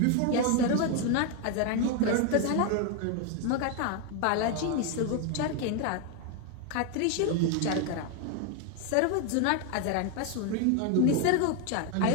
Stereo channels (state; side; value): different; both; correlation 0.01